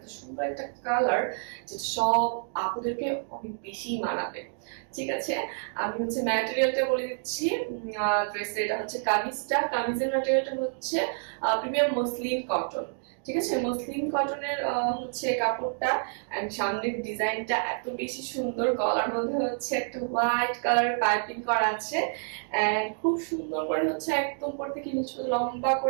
সুন্দর একটা কালার, যেটা সব আপুদেরকে অনেক বেশি মানাবে। ঠিক আছে, আমি হচ্ছে ম্যাটেরিয়ালটা বলে দিচ্ছি। ড্রেসের এটা হচ্ছে কামিজের ম্যাটেরিয়ালটা হচ্ছে প্রিমিয়াম মসলিন কটন। ঠিক আছে, মসলিন কটনের হচ্ছে কাপড়টা। এন্ড সামনের ডিজাইনটা এত বেশি সুন্দর, গলার মধ্যে হচ্ছে একটা হোয়াইট কালারের পাইপিং করা আছে। এন্ড খুব সুন্দর করে হচ্ছে একদম উপর থেকে নিচে লম্বা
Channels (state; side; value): silent; left; digital silence